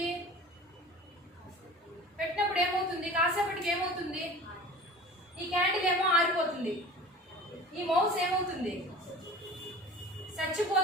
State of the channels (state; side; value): normal; both; correlation 0.40